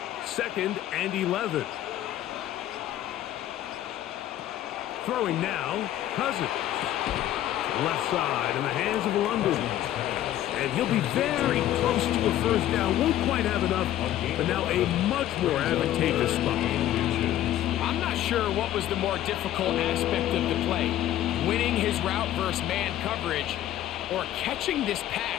2nd and 11. Throwing now, Cousins. Left side in the hands of London. And he'll be very close to a 1st down. Won't quite have enough, but now a much more advantageous spot. I'm not sure what was the more difficult aspect of the play. Winning his route versus man coverage, or catching this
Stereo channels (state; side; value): quieter; right; 12.8 dB